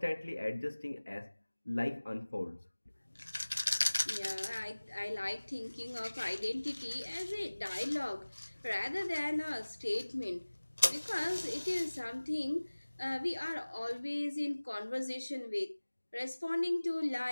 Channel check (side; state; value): both; inverted; correlation -1.00